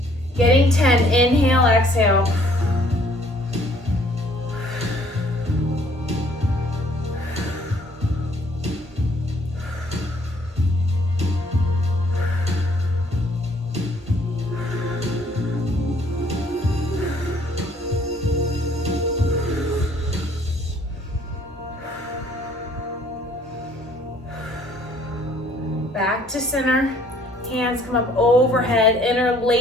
Getting 10, inhale, exhale. Back to center. Hands come up overhead,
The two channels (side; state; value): both; normal; correlation 0.60